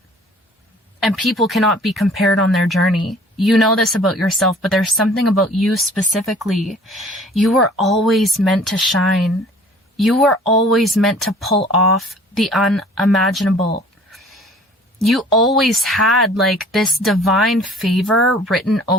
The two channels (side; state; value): both; normal; correlation 0.50